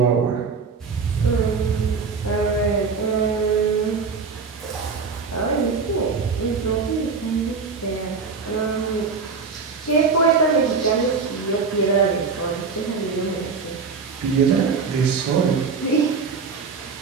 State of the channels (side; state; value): left; quieter; 5.1 dB